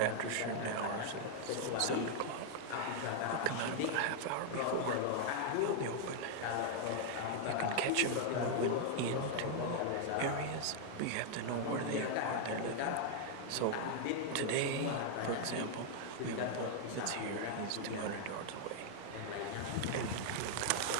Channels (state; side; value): different; both; correlation -0.01